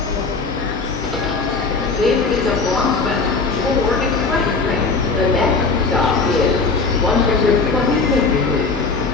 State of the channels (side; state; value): right; quieter; 4.3 dB